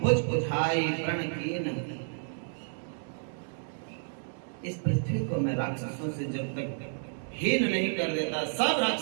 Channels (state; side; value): silent; left; digital silence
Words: उठाई प्रण कीन। इस पृथ्वी को मैं राक्षसों से जब तक हीन नहीं कर देता, सब